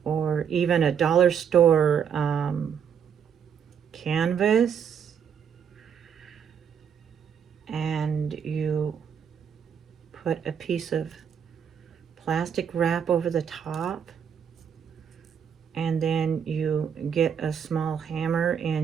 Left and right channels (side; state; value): left; quieter; 7.7 dB